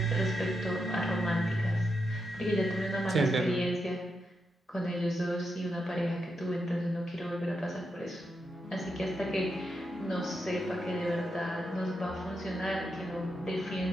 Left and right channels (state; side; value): normal; both; correlation 0.84